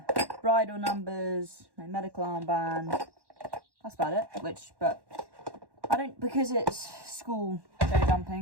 numbers, my medical armband. That's about it. But I don't, because it's school show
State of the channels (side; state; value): left; late; 1.1 ms